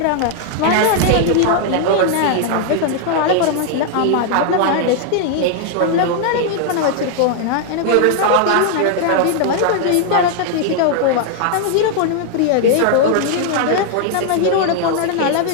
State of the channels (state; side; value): different; both; correlation 0.00